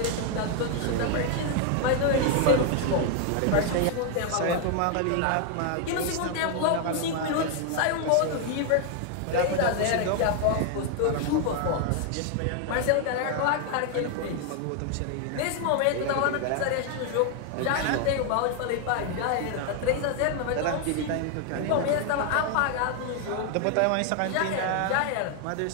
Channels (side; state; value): both; different; correlation 0.00